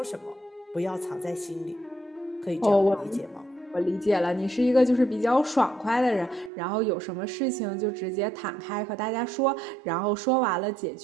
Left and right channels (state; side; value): drops out; left; at 6.5 s